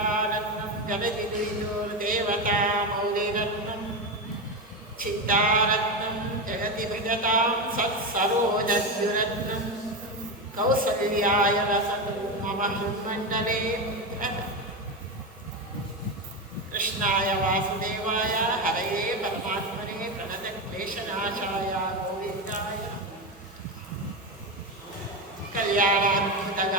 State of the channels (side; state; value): both; normal; correlation 0.15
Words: जगदिदेवता मौलिरत्नं चित्तारत्नं जगति भजतां सत्सरोजद्युरत्नं कौसल्याय वसतु मम हृन्मण्डले कृष्णाय वासुदेवाय हरये परमात्मने प्रणतक्लेशनाशाय गोविन्दाय